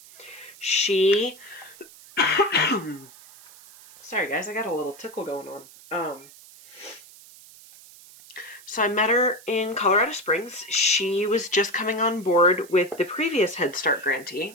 She, sorry guys, I got a little tickle going on. So I met her in Colorado Springs. She was just coming on board with the previous Head Start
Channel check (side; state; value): right; noise; hiss, 21 dB below the sound